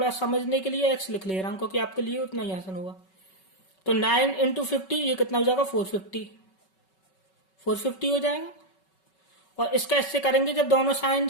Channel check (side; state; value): right; late; 5.3 ms